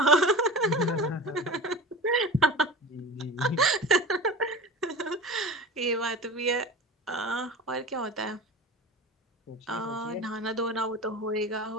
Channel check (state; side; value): normal; both; correlation 0.32